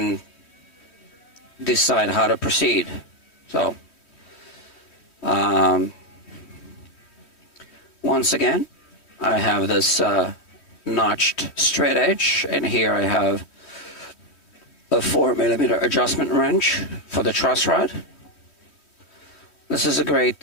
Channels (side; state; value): right; late; 3.1 ms